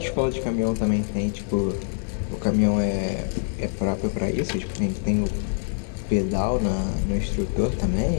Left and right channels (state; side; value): silent; right; digital silence